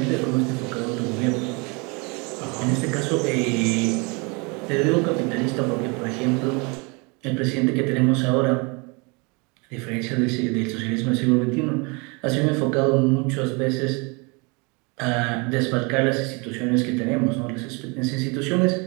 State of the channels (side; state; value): left; quieter; 30.2 dB